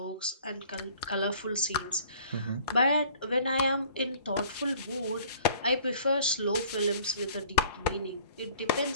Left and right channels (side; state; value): both; inverted; correlation -0.52